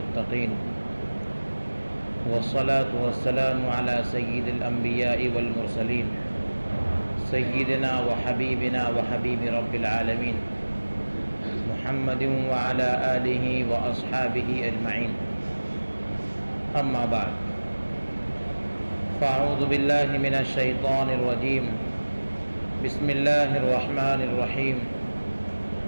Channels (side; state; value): both; inverted; correlation -1.00